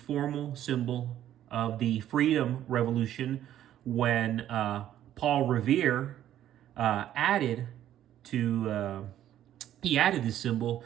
symbol of the Freedom Revolution when Paul Revere added this symbol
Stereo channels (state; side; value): quieter; left; 11.7 dB